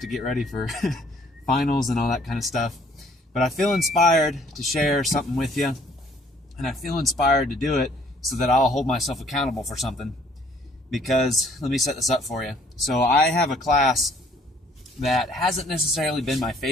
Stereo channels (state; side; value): normal; both; correlation 0.60